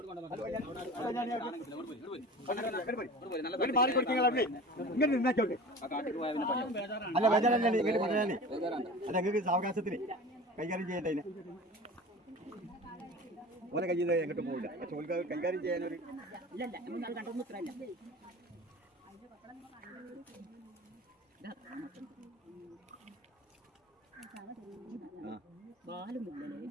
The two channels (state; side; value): normal; both; correlation 0.37